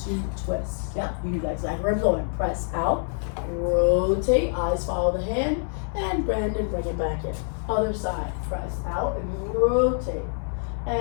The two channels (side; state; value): right; silent; 61 dB below the other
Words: twists. Yeah, you do that exactly where I'm going. Press out, rotate, eyes follow the hand, and bend and bring it back in. Other side, press out and rotate.